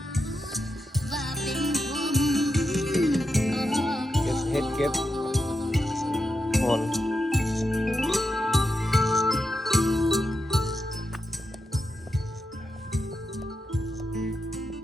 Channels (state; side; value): normal; both; correlation 0.86